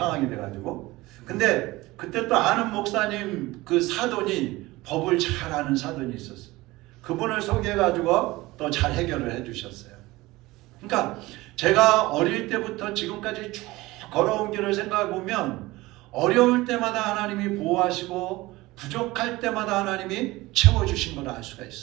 돼가지고. 근데 그때 또 아는 목사님 사돈이 법을 잘 아는 사돈이 있었어요. 그분을 소개해가지고 또 잘 해결을 해주셨어요. 그러니까 제가 어릴 때부터 지금까지 쭉 걸어온 길을 생각해 보면 어려울 때마다 하나님이 보호하시고 부족할 때마다 하나님이 채워주신 걸 알 수가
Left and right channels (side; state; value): left; quieter; 19.9 dB